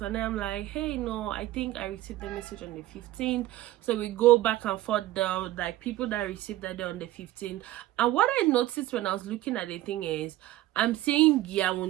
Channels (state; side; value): quieter; left; 15.5 dB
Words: and then I'm like, hey, no, I think I received the message on the 15th. So we go back and forth down, like people that received that day on the 15th. And what I noticed when I was looking at the thing is, I'm saying